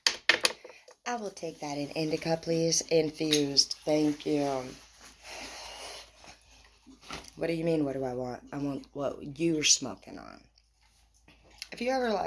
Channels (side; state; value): both; identical; correlation 1.00